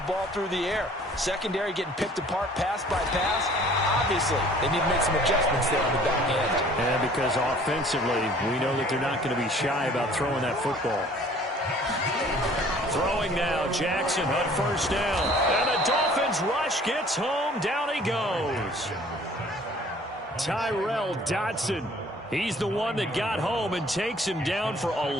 ball through the air. Secondary getting picked apart pass by pass. Obviously, they need to make some adjustments there on the back end. And because offensively, we know that they're not going to be shy about throwing that football. Throwing now, Jackson on first down. And the Dolphins rush gets home. Down he goes. Tyrell Dodson. He's the one that got home and takes him down for a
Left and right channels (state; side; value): normal; both; correlation 0.53